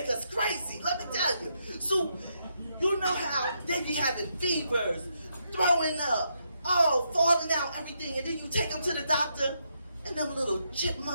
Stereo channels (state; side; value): inverted; both; correlation -0.79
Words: us crazy, let me tell you. So, you know how they be having fevers, throwing up, falling out, everything. And then you take them to the doctor, and them little